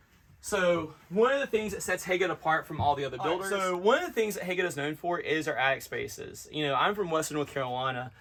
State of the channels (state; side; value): identical; both; correlation 1.00